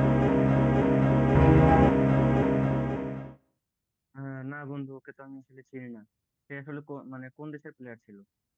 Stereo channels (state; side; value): identical; both; correlation 1.00